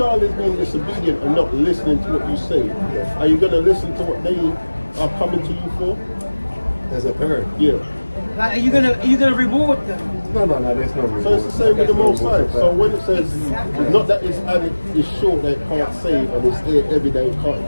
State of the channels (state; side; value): inverted; both; correlation -1.00